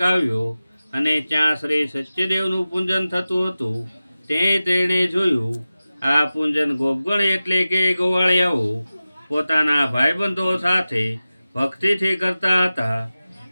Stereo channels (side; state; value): both; inverted; correlation -0.96